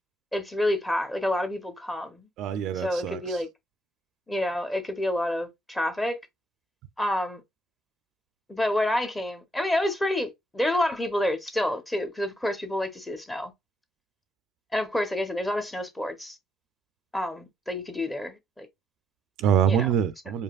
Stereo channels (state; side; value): normal; both; correlation 0.74